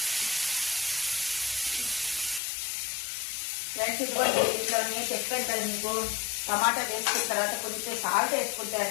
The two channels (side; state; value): right; drops out; at 2.4 s